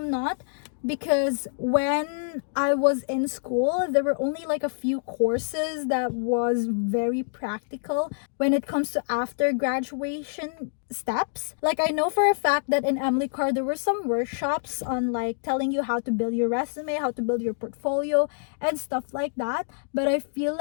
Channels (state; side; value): silent; right; digital silence